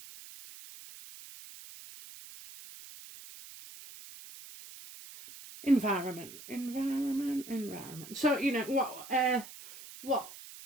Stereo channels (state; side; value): noise; right; hiss, 15 dB below the sound